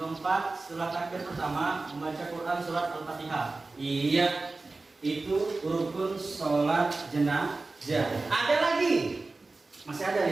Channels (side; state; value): left; quieter; 3.5 dB